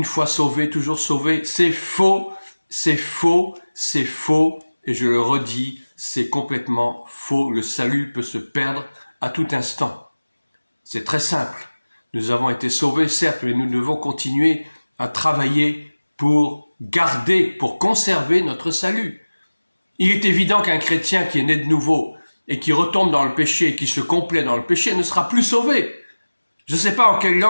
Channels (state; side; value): inverted; both; correlation -1.00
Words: fois sauvé, toujours sauvé. C'est faux, c'est faux, c'est faux. Et je le redis, c'est complètement faux. Le salut peut se perdre à tout instant. C'est très simple. Nous avons été sauvés, certes, mais nous devons continuer à travailler pour garder, pour conserver notre salut. Il est évident qu'un chrétien qui est né de nouveau et qui retombe dans le péché et qui se complaît dans le péché ne sera plus sauvé. Je ne sais pas en quelle